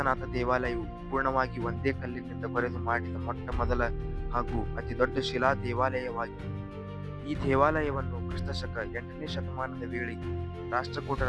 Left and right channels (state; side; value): identical; both; correlation 1.00